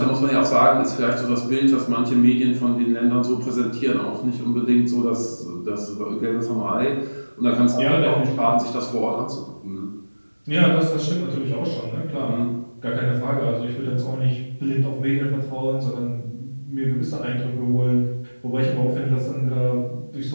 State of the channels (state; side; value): inverted; both; correlation -1.00